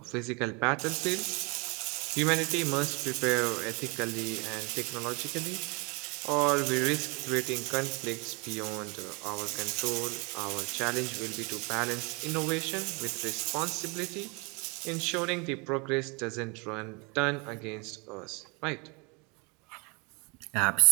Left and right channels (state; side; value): quieter; left; 30.1 dB